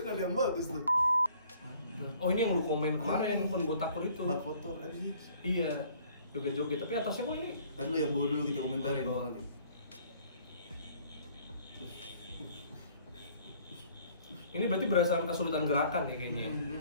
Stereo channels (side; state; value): both; inverted; correlation -0.57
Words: Ada yang bagus tuh. Oh ini yang lu komen kemarin, kon botakur itu. Bak kotor aja. Iya, joget-joget. Tapi atasnya kok ini? Kan lu yang bawa dulu kita komentarin. Oh, Ini berarti berdasarkan kesulitan gerakan ya kayaknya.